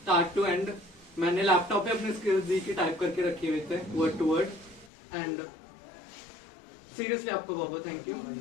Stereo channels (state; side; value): drops out; right; at 4.9 s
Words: टू एंड। मैंने लैपटॉप पे अपने स्किल्स दी की टाइप करके रखे हुए थे word to word. And seriously आपको बहुत बहुत थैंक यू।